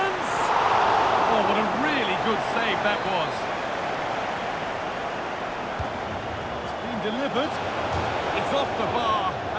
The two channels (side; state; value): both; identical; correlation 1.00